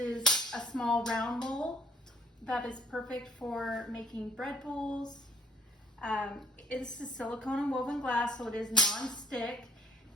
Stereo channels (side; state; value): both; normal; correlation 0.61